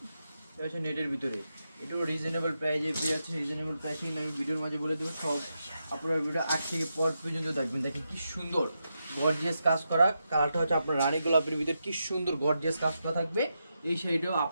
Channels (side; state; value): both; inverted; correlation -0.86